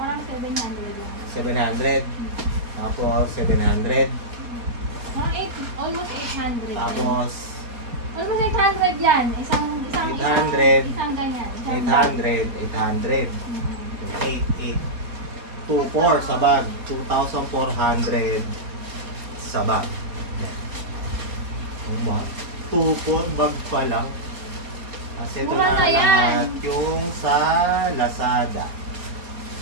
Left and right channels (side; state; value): left; late; 4.3 ms